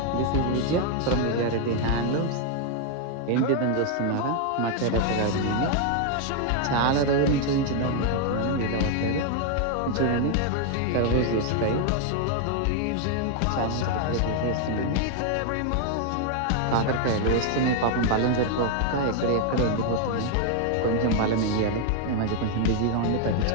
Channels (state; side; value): different; both; correlation 0.00